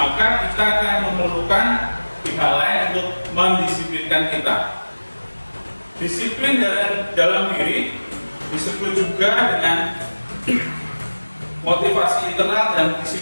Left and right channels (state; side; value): inverted; both; correlation -1.00